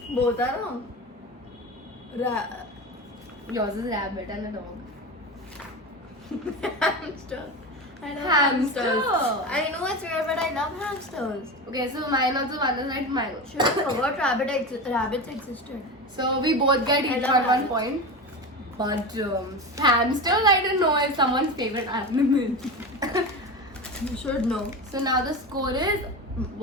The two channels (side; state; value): both; normal; correlation 0.24